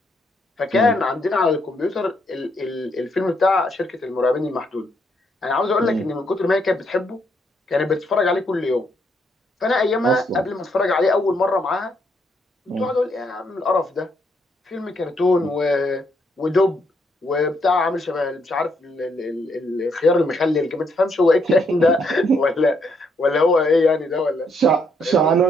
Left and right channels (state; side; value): normal; both; correlation 0.74